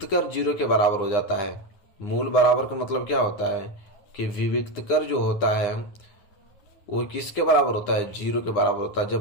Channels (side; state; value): right; late; 9.8 ms